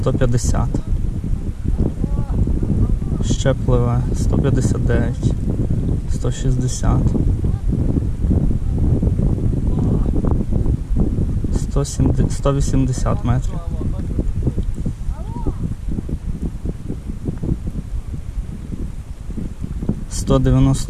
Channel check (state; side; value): identical; both; correlation 1.00